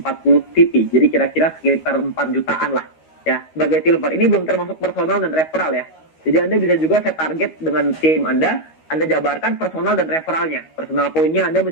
VP. Jadi kira-kira sekitar 4 jutaan lah. Ya, sebagai silver. Ini belum termasuk personal dan referral ya. Jadi Anda bisa juga set target dengan tim Anda jabarkan personal dan referralnya. Personal poinnya Anda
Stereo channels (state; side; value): late; right; 13 ms